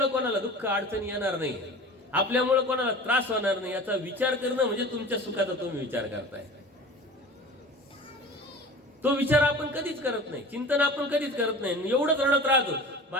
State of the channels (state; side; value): normal; both; correlation 0.38